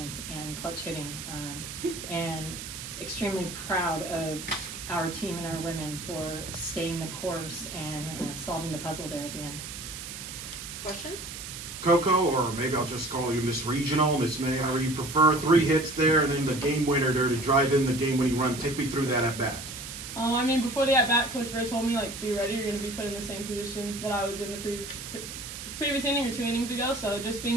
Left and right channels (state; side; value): noise; right; hiss, 9 dB below the sound